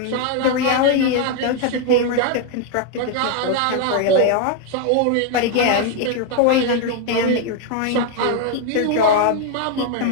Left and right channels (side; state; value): both; different; correlation 0.00